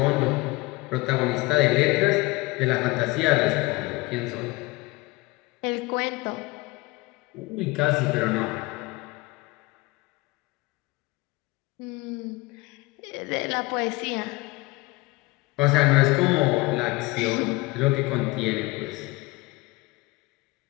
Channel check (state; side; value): quieter; right; 22.6 dB